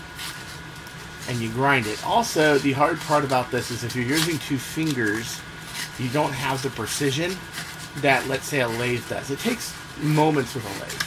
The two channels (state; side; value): identical; both; correlation 1.00